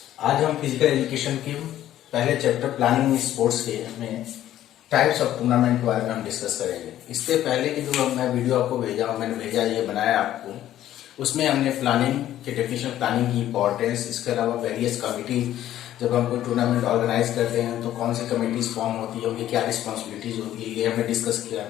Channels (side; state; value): right; quieter; 12.6 dB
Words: आज हम फिजिकल एजुकेशन के पहले चैप्टर प्लानिंग स्पोर्ट्स के में टाइप्स ऑफ टूर्नामेंट के बारे में हम डिस्कस करेंगे। इससे पहले की जो मैं वीडियो आपको मैंने भेजा ये बनाया आपको, उसमें हमने प्लानिंग के डेफिनेशन, प्लानिंग की इंपॉर्टेंस, इसके अलावा वेरियस कमिटी, जब हम कोई टूर्नामेंट ऑर्गेनाइज करते हैं तो कौन सी कमिटीज फॉर्म होती है, उनकी क्या रिस्पॉन्सिबिलिटीज होती है, ये हमने डिस्कस किया।